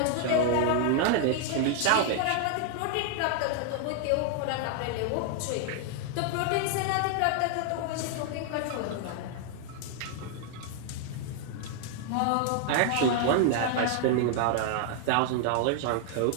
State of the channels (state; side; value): different; both; correlation 0.00